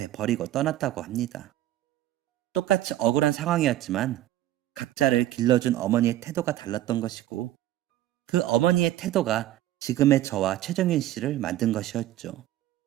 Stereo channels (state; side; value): quieter; left; 14.0 dB